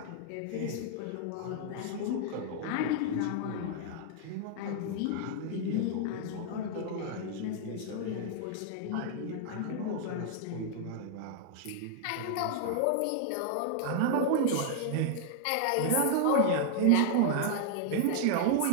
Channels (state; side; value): different; both; correlation 0.00